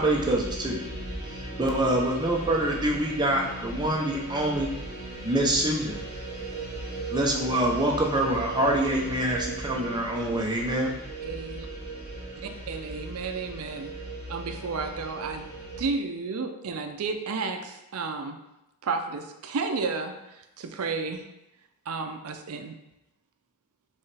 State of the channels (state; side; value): normal; both; correlation 0.31